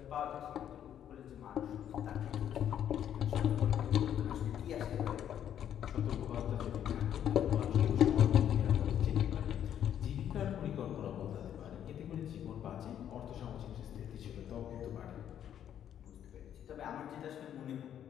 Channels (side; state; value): right; quieter; 9.9 dB